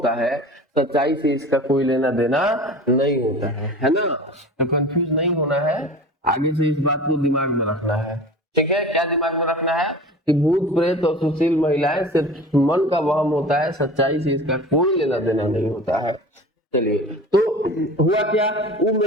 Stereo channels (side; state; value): both; normal; correlation 0.37